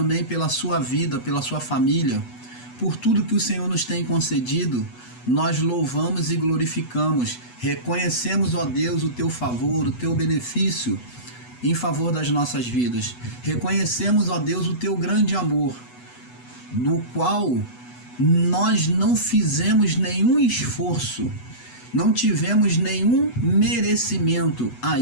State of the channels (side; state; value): right; late; 8.1 ms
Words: pela sua vida, pela sua família, por tudo que o Senhor nos tem concedido. Nós louvamos e glorificamos, reconhecemos, ó Deus, o teu favor, o teu benefício em favor das nossas vidas. Reconhecemos, ó Deus, o teu grande amor, no qual nós não fizemos nenhum esforço, não tivemos nenhum merecimento a